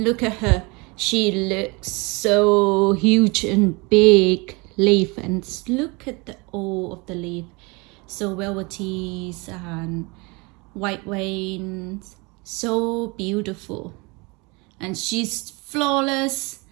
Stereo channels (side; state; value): left; quieter; 27.4 dB